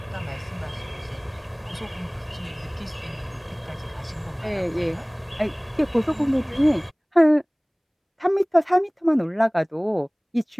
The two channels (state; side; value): identical; both; correlation 1.00